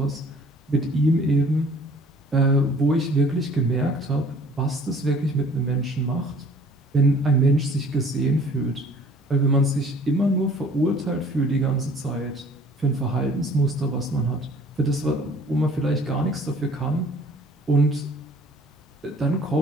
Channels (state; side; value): normal; both; correlation 0.53